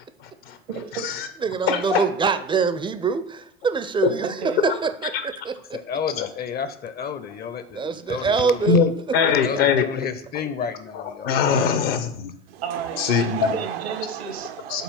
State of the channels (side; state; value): both; normal; correlation 0.24